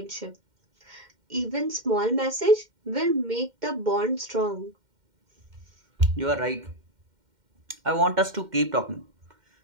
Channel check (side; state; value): left; late; 2.1 ms